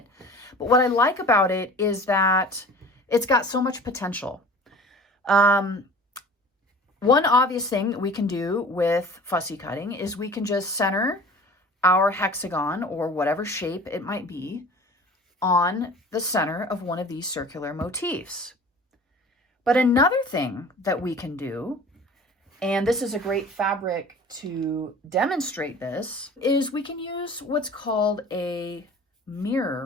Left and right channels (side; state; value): both; normal; correlation 0.42